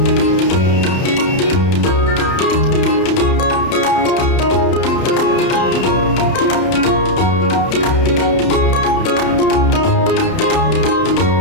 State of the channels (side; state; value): right; late; 31 ms